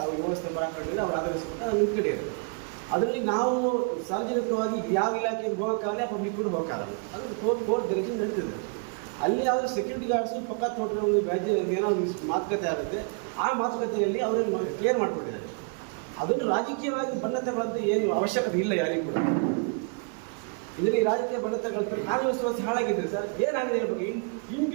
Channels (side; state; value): left; quieter; 38.4 dB